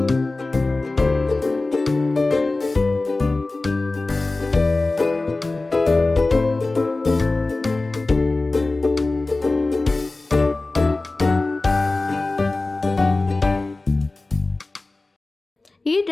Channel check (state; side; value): quieter; right; 3.2 dB